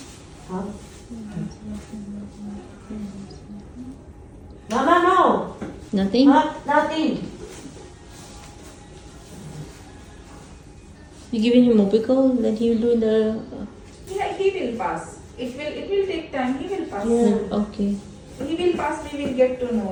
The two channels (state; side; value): identical; both; correlation 1.00